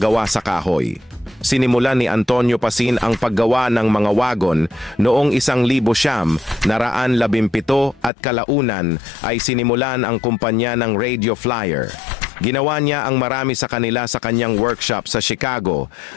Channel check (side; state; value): right; drops out; at 8.1 s